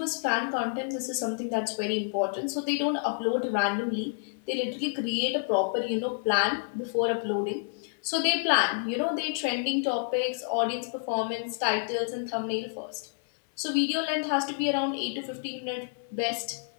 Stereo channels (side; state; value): right; silent; 59 dB below the other